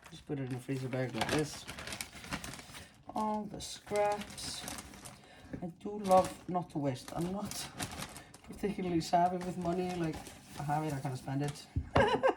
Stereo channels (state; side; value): identical; both; correlation 1.00